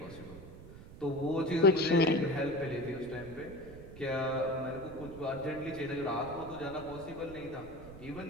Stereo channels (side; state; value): right; noise; rumble, 15 dB below the sound